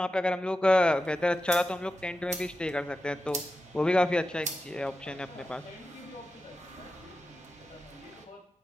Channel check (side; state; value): both; normal; correlation 0.91